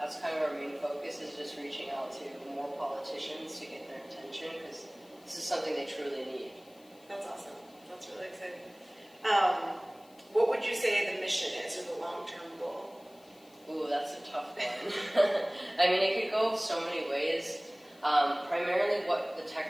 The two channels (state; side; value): noise; left; hiss, 28 dB below the sound